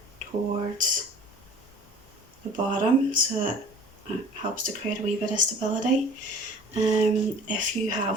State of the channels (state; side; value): normal; both; correlation 0.46